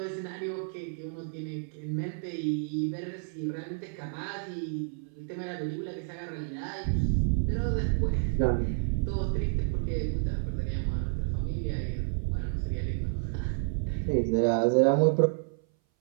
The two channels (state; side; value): silent; left; 58 dB below the other